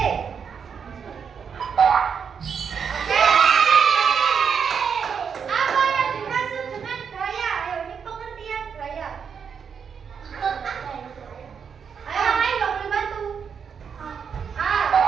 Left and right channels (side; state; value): left; quieter; 6.8 dB